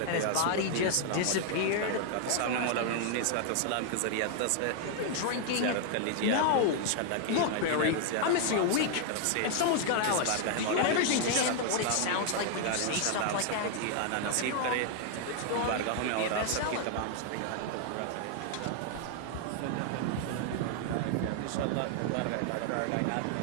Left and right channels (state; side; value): different; both; correlation 0.00